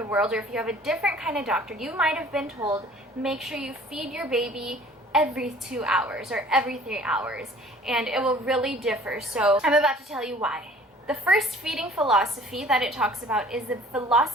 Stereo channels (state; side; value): normal; both; correlation 0.51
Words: world, or if you have a different kind of doctor, you might have been told, make sure you feed your baby every 2 hours or every 3 hours, and it will really differ. So I'm about to tell you why. The first feeding philosophy that it talks about is the